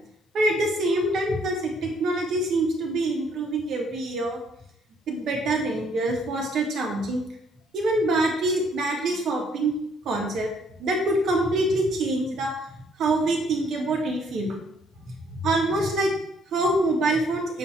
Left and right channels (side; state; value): both; normal; correlation 0.65